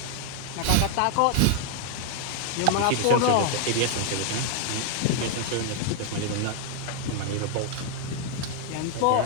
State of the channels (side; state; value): both; different; correlation 0.00